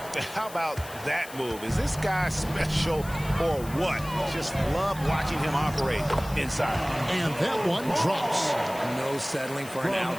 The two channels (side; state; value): left; noise; hiss, 16 dB below the sound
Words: How about that move? Is this guy special or what? Just love watching him operate inside. And that one drops. No settling for an